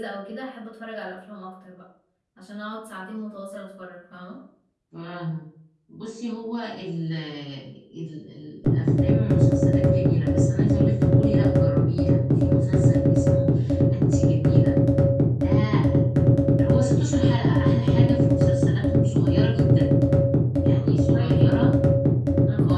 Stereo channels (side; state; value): both; identical; correlation 1.00